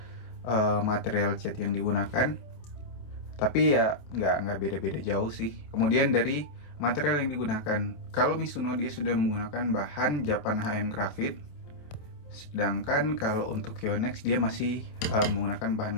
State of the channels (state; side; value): late; right; 27 ms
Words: material cat yang digunakan. Tapi ya nggak beda-beda jauh sih. Kemudian dari material yang digunakan, kalau Mizuno dia sudah menggunakan bahan Japan HM Graphite. Sedangkan kalau untuk Yonex dia masih menggunakan